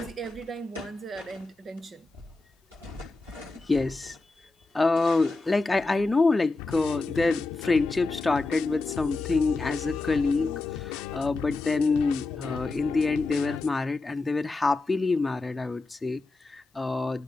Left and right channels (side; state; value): right; quieter; 3.4 dB